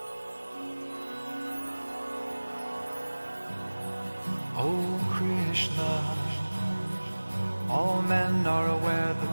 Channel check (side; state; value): both; inverted; correlation -1.00